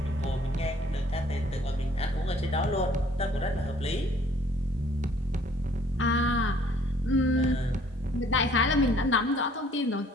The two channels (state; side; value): normal; both; correlation 0.58